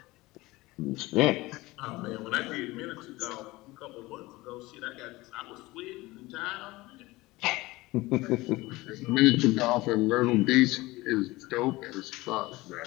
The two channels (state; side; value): quieter; right; 20.4 dB